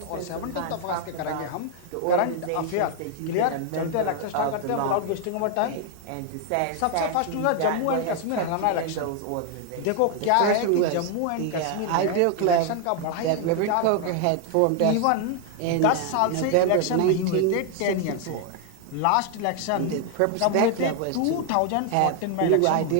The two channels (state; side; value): different; both; correlation 0.00